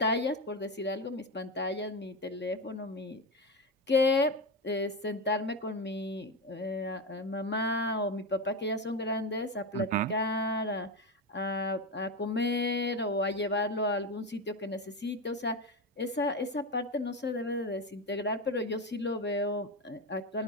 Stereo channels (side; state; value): both; normal; correlation 0.16